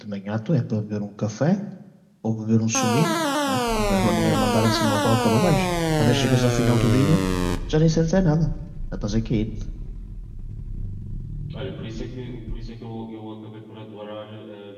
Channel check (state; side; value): identical; both; correlation 1.00